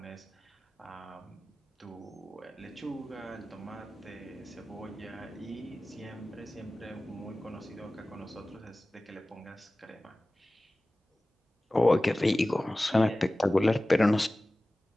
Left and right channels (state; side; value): normal; both; correlation 0.97